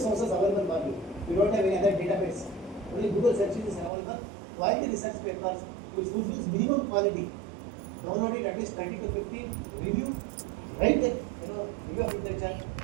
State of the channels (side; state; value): left; drops out; at 3.9 s